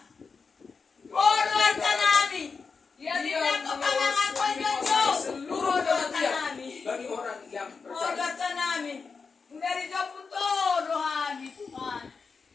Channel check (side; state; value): right; quieter; 5.0 dB